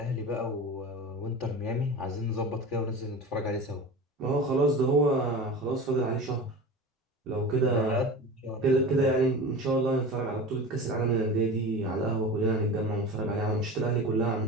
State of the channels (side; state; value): both; normal; correlation 0.32